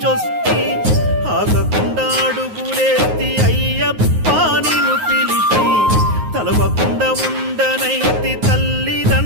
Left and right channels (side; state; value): left; late; 9.5 ms